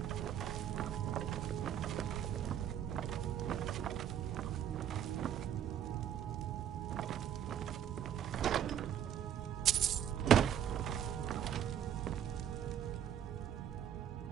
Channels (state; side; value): quieter; left; 9.6 dB